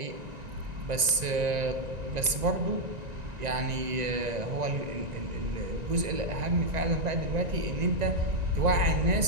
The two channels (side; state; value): left; late; 1.9 ms